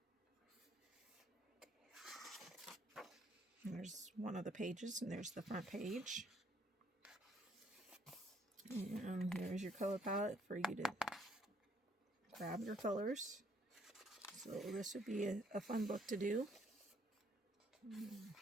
There's one of the pages, and there's the front page. And here's your color palette for you to grab your colors. So this would be a fun book to do.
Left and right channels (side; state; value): both; normal; correlation 0.66